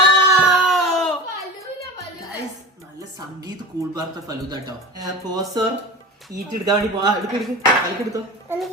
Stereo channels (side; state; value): both; normal; correlation 0.31